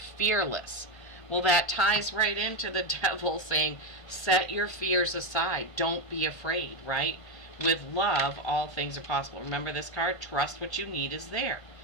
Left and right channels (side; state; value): right; late; 1.5 ms